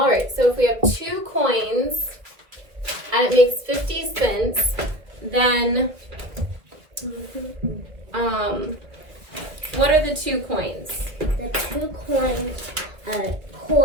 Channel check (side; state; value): left; late; 1.8 ms